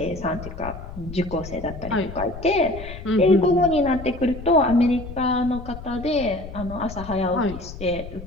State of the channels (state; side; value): noise; left; rumble, 12 dB below the sound